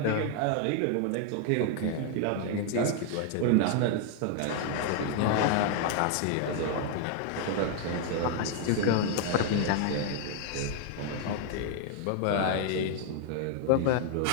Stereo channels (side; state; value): both; different; correlation 0.00